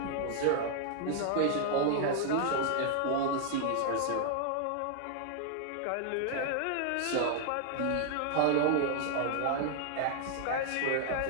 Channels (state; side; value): different; both; correlation 0.00